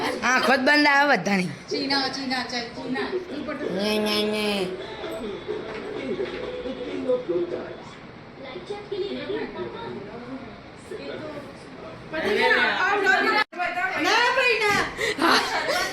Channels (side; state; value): both; identical; correlation 1.00